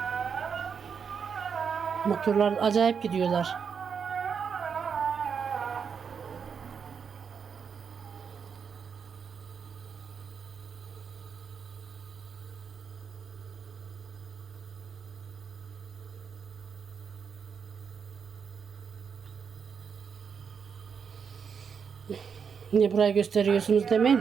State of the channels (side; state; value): left; quieter; 6.5 dB